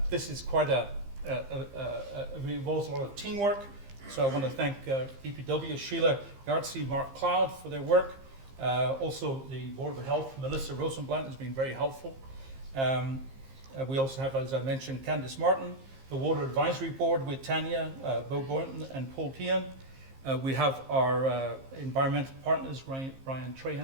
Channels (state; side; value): late; left; 15 ms